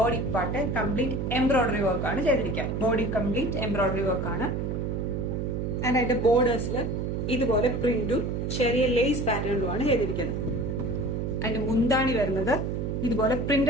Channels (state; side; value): noise; right; hum, 1 dB below the sound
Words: part complete embroidery work ആണ് ചെയ്തിരിക്കുക. ബോഡി കംപ്ലീറ്റ് എംബ്രോയിഡറി വർക്ക് ആണ്. ആൻഡ് അതിന്റെ ബോർഡേഴ്സിൽ ഇതുപോലെ പ്രിന്റും ചെറിയ ലേസ് പാറ്റേണിലുമാണ് ചെയ്തിരിക്കുന്നത്. അതിന്റെ മുന്താണി വരുന്നത് ഇതുപോലെ